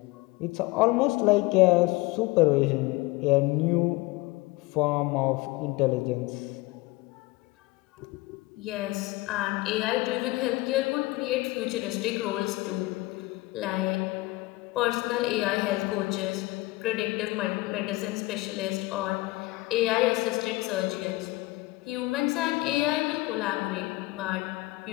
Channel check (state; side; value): quieter; right; 20.9 dB